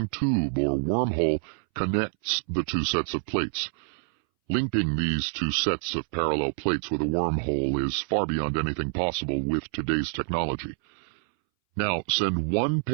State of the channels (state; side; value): silent; left; 60 dB below the other